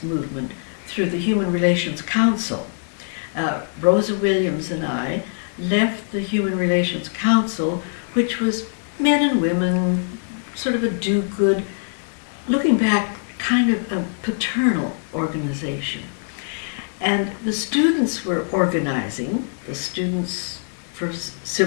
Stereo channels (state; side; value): silent; right; digital silence